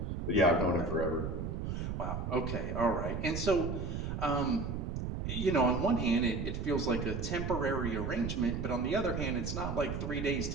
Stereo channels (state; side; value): noise; right; rumble, 3 dB below the sound